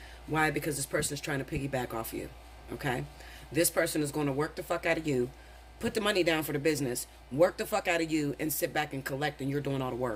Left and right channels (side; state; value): both; identical; correlation 1.00